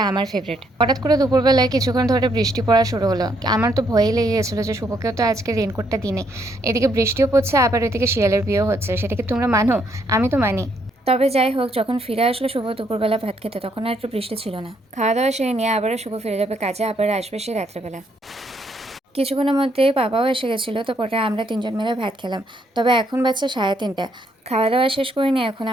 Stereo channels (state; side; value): normal; both; correlation 0.72